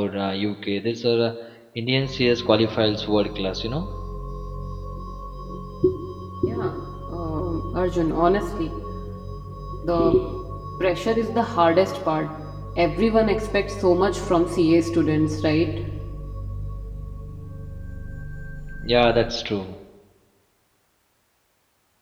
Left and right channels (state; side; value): identical; both; correlation 1.00